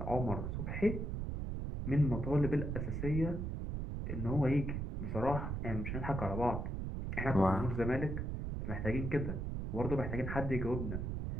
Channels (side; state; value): right; noise; rumble, 3 dB below the sound